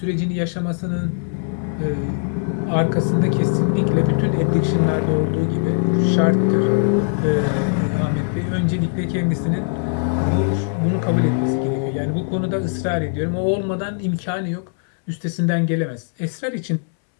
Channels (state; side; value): silent; right; 65 dB below the other